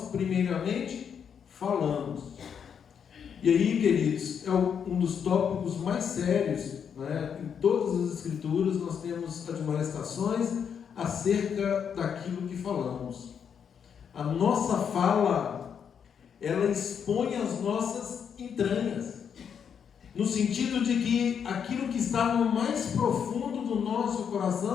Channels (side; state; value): right; quieter; 7.5 dB